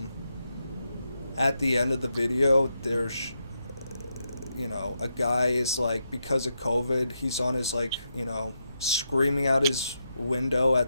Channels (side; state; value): both; inverted; correlation -0.83